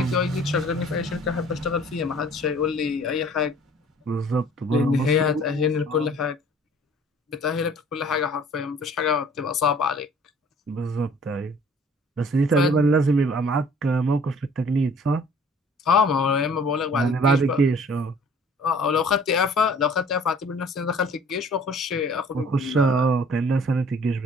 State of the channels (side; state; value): both; normal; correlation 0.53